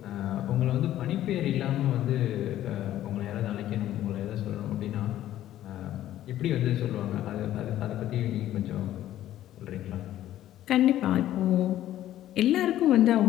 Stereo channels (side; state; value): right; quieter; 13.0 dB